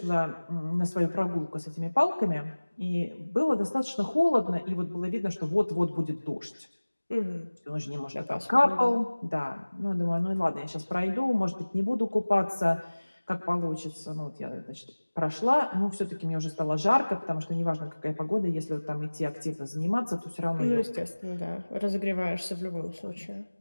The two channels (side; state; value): both; inverted; correlation -1.00